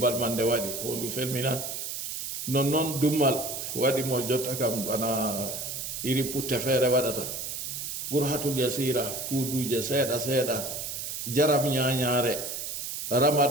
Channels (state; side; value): noise; right; hiss, 5 dB below the sound